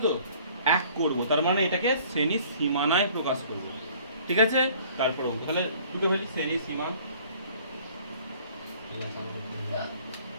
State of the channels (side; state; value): both; inverted; correlation -0.53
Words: তো। এক করব, তার মানে এটাকে শ্রেণী সীমানায় প্রকাশ করব, ঠিক আছে? তারপর অঙ্ক তাহলে দুটো ফেলি, শ্রেণী সীমা,